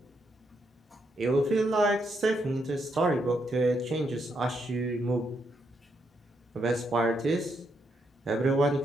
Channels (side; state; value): both; normal; correlation 0.78